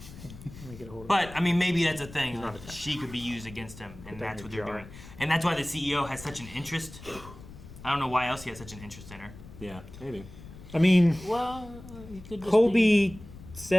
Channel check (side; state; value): left; noise; rumble, 16 dB below the sound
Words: me get a hold of But, I mean, maybe that's a thing. Like, she could be used against him, and that's what they're doing. And that's why the CEO has such an interest. I don't know why else he has such an interest in her. Yeah, maybe. I mean, well, Colby